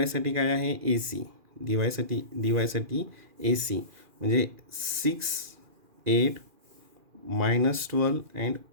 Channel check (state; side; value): late; left; 2.4 ms